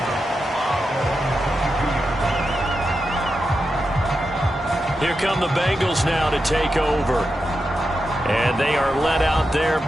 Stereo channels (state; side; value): normal; both; correlation 0.88